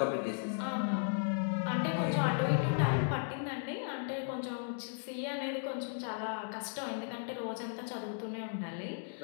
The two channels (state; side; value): silent; right; digital silence